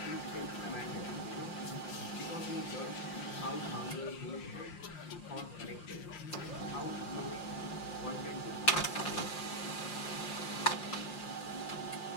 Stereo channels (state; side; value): late; right; 5.7 ms